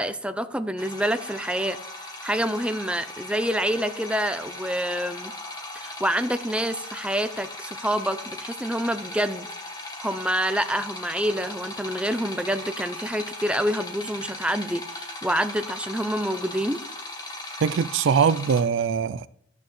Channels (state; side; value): normal; both; correlation 0.55